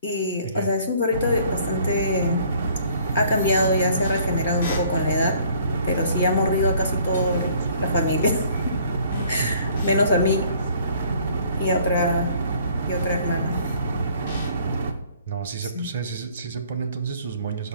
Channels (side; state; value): both; inverted; correlation -0.58